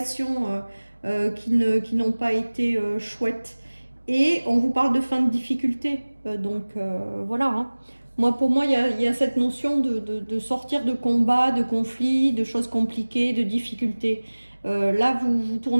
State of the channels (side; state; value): both; inverted; correlation -1.00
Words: qui n'ont pas été chouettes. Et on vous parle de fin de difficulté. Voilà. Hein. Pour moi, il y a cette notion de sortir de combats, de conflits, de choses compliquées, de difficultés. Là, vous